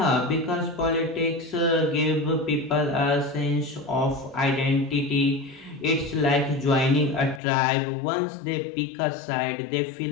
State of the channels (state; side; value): drops out; right; at 7.4 s